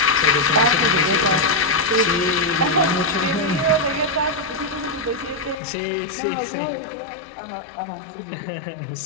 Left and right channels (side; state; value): right; drops out; at 5.6 s